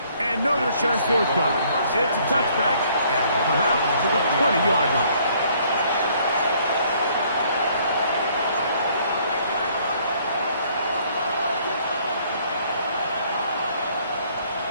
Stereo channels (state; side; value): inverted; both; correlation -0.63